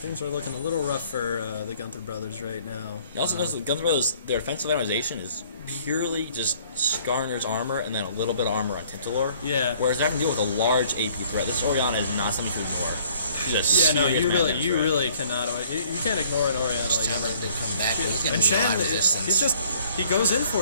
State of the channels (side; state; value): both; inverted; correlation -0.58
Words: are looking a little rough for the Gunther brothers right now. You also notice the Gunther brothers, their offensive itemization is purely just Skarner's armor and then a little bit of armor on Tintalor. Yeah. Whereas they have to deal with a large AP threat. This Orianna is not something to ignore. You really cannot. You can't ignore an Orianna ever. To come back, he's gonna and be a lot of resistance. He goes in